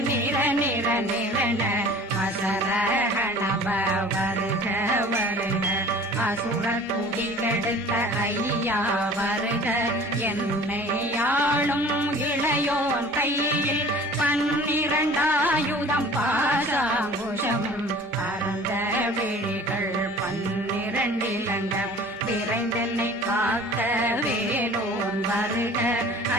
நிர நிர நிரண அசரகண வருக வருக அசுர குடி கெடுத்த ஐயா வருக என்னை ஆளும் இளையோன் கையில் 12 பாசாங்குஷம் பரந்த விழிகள் 12 இலங்கம் விரைந்தென்னை காக்க வேலோன் வருக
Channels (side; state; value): both; normal; correlation 0.46